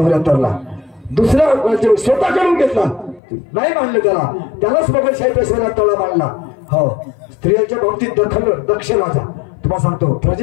दुसरा राज्य स्वतः करून घेतला, नाही मानलं त्यालाच मोगलशाही पेशव्याला तळा मानला. हो, स्त्रियांच्या बाबतीत दक्ष राजा तुम्हाला सांगतो,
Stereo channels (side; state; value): right; drops out; at 3.2 s